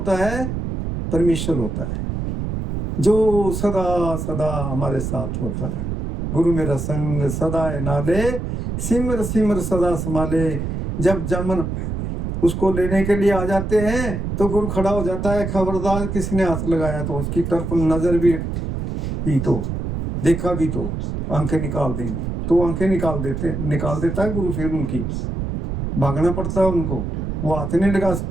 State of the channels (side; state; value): right; noise; rumble, 3 dB below the sound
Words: है? परमेश्वर होता है, जो सदा सदा हमारे साथ होता है। गुरु मेरा संग सदा है नाले, सिमर सिमर सदा संभाले। जब जमन उसको लेने के लिए आ जाते हैं तो गुरु खड़ा हो जाता है, खबरदार किसने हाथ लगाया तो उसकी तरफ नजर भी की तो देखा भी तो आंखें निकाल देंगे। तो आंखें निकाल देता है गुरु। फिर उनकी भागना पड़ता है उनको, वो हाथ नहीं लगा